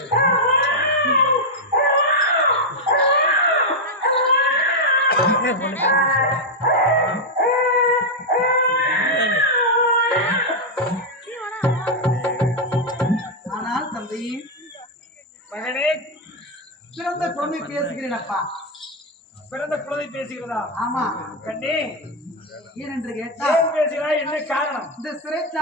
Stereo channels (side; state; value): both; normal; correlation -0.01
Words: ஆனால் தந்தை மகனே பிறந்த குழந்தை பேசுகிறேன் அப்பா. பிறந்த குழந்தை பேசுகிறதா ஆமா, கண்ணே ஏனென்று கேட்டால் ஏன் பேசுகிறாய் என்ன காரணம் இந்த